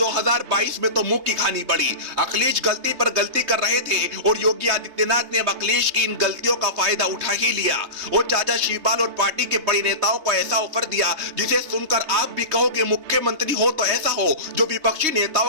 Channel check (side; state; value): left; late; 3.2 ms